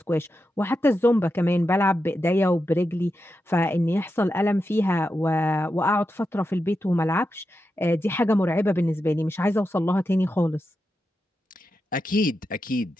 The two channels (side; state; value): both; normal; correlation 0.88